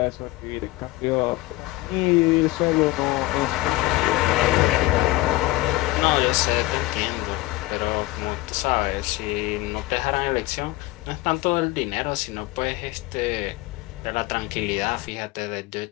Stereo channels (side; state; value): right; quieter; 19.4 dB